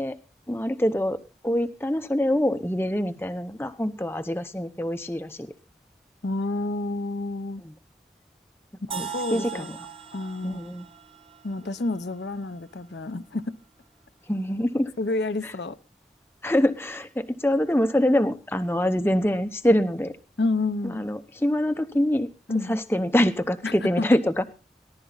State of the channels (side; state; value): both; normal; correlation 0.86